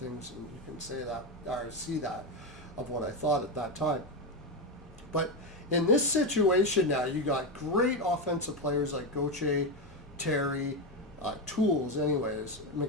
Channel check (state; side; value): normal; both; correlation 0.12